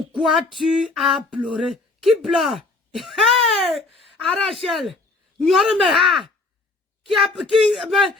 tu as pleuré? Qui pleure? Hey! Arachel! Nyormeha!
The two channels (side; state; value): right; quieter; 3.5 dB